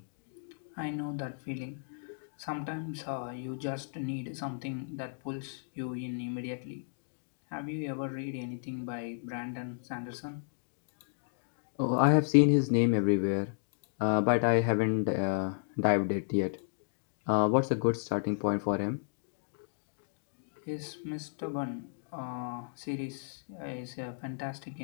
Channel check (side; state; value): right; silent; digital silence